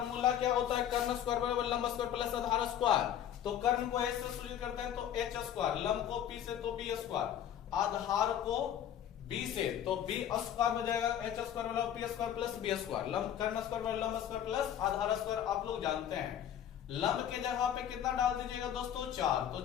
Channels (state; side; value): quieter; right; 10.1 dB